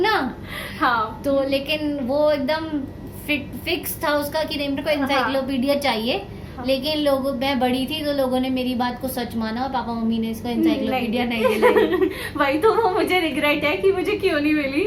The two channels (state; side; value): identical; both; correlation 1.00